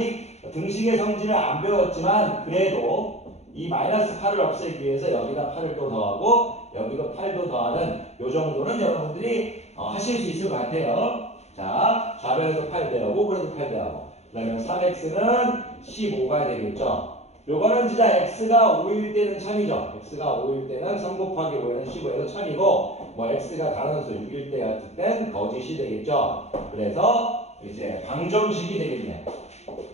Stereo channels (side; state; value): right; late; 0.32 ms